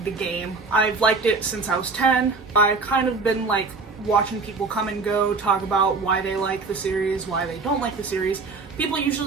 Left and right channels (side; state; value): left; quieter; 4.1 dB